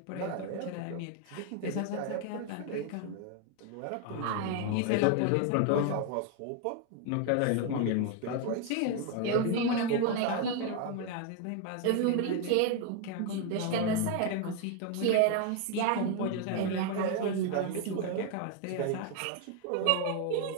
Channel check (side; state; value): both; different; correlation 0.01